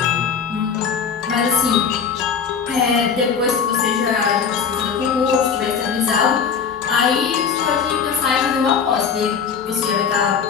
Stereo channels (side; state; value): right; quieter; 6.6 dB